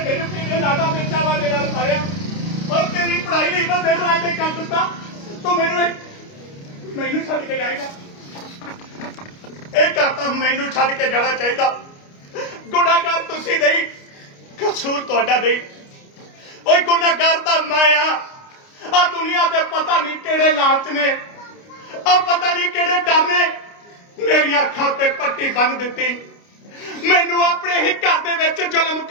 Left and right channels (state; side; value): late; right; 29 ms